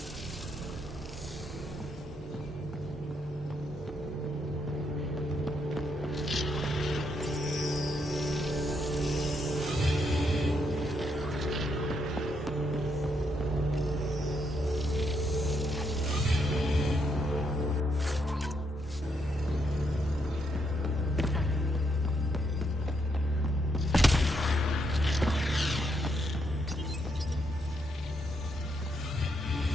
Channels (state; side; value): normal; both; correlation 0.77